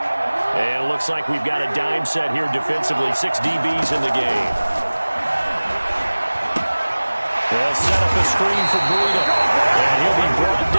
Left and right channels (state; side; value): inverted; both; correlation -1.00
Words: And it looks like we've got a dime set here defensively. 6 DBs in the game. They'll set up a screen for Breida. And he'll be brought